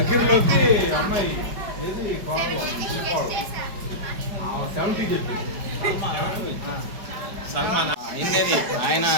అమ్మాయి ఏది 70 చెప్పి సల్మాన్ ఆయన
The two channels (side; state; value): left; late; 5.2 ms